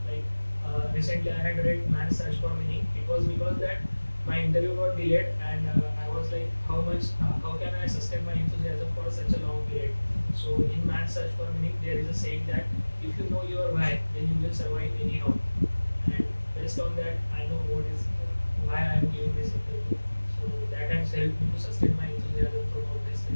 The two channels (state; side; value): inverted; both; correlation -1.00